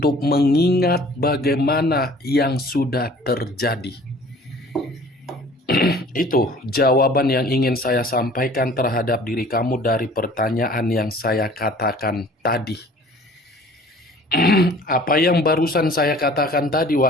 mengingat bagaimana yang sudah terjadi. Itu jawaban yang ingin saya sampaikan terhadap diri kamu dari pertanyaan yang saya katakan tadi. Apa yang barusan saya katakan tadi,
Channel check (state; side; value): normal; both; correlation 0.50